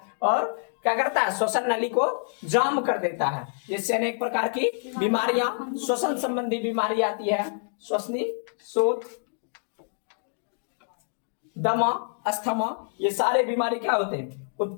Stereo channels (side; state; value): right; silent; digital silence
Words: और क्या करता है? श्वसन नली को जाम कर देता है, जिससे अनेक प्रकार की बीमारियां, श्वसन संबंधी बीमारी आती है। श्वसनी शोथ, दमा, अस्थमा, ये सारे बीमारी क्या होते हैं?